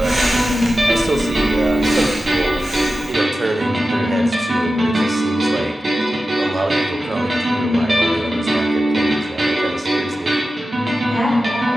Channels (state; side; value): normal; both; correlation 0.93